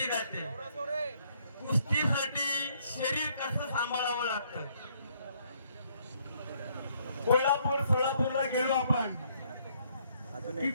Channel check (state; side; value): inverted; both; correlation -0.68